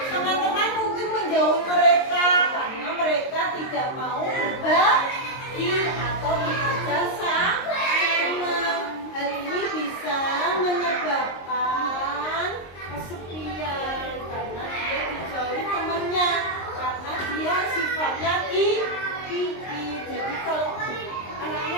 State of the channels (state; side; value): late; right; 23 ms